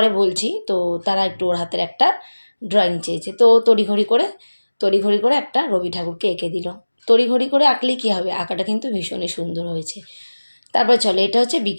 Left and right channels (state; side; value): inverted; both; correlation -1.00